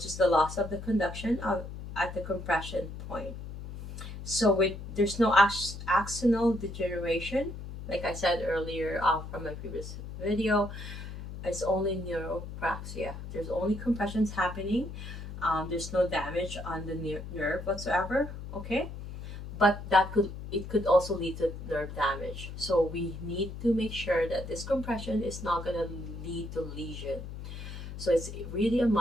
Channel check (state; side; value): noise; left; hum, 10 dB below the sound